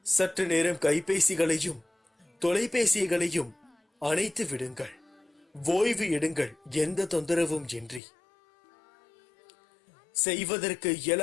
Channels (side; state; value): right; drops out; at 8.0 s